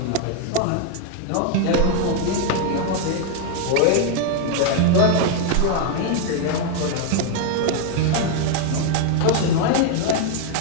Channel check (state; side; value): different; both; correlation 0.00